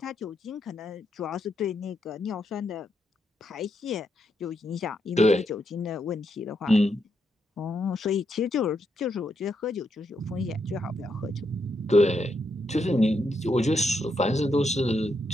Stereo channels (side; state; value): both; normal; correlation 0.80